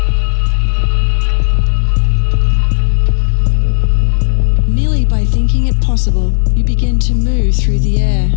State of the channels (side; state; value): right; silent; digital silence